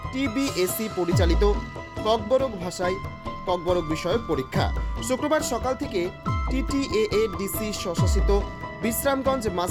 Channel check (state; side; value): identical; both; correlation 1.00